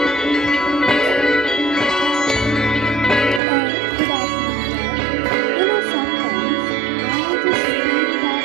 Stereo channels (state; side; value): drops out; left; at 3.4 s